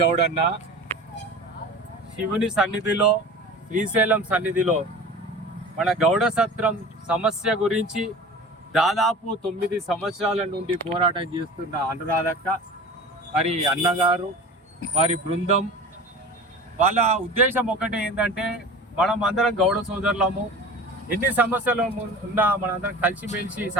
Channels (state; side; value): normal; both; correlation 0.37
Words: శివుని సన్నిధిలో, శ్రీశైలం సన్నిధిలో మన గౌడ సత్రం సమస్య గురించి దాదాపు 9 సంవత్సరాల నుండి పోరాటం చేస్తున్న అనురాధక్క, మరి అన్నగారు, వారి బృందం, వాళ్ళ ఉద్దేశం ఒకటే ఏంటంటే మనం అందరం గౌడ సోదరులము, ఎన్ని సమస్యలు ఉన్నా మనందరం కలిసిమెలిసి